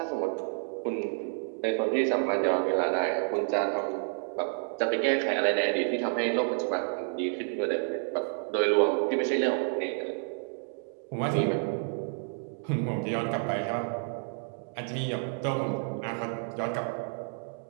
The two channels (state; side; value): silent; left; 58 dB below the other